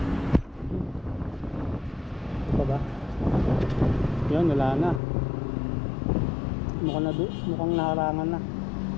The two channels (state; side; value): drops out; right; at 5.0 s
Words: Yan, wala na. Mukhang naharangan na.